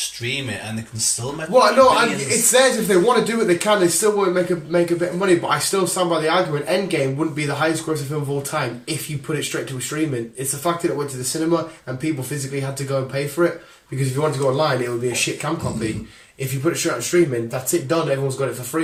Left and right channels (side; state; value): both; identical; correlation 1.00